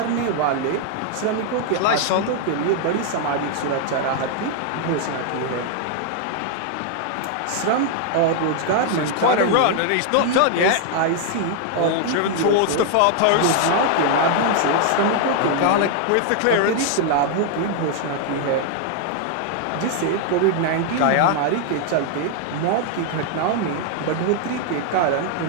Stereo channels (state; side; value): different; both; correlation 0.00